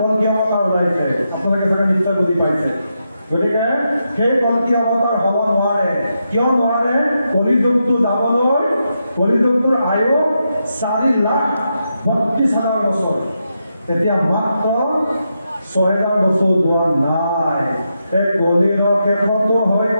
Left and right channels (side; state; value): both; inverted; correlation -0.84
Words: অৱতাৰ ওলাইছে। আপোনালোকে চাগে নিশ্চয় বুজি পাইছে। গতিকে সেই কল্কি অৱতাৰ হ'ব নোৱাৰে। কিয় নোৱাৰে? কলিযুগটো যাবলৈ কলিযুগটোৰ আয়ু 4,32,000 বছৰ। এতিয়া মাত্ৰ 6,000 বছৰ যোৱা নাই। এই কলিৰ শেষতো হৈ